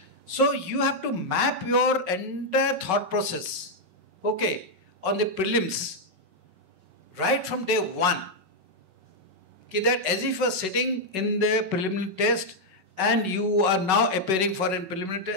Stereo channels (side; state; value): left; late; 5.4 ms